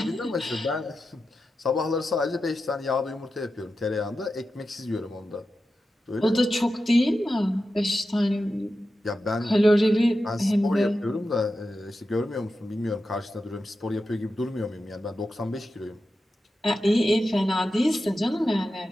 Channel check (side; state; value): both; normal; correlation 0.91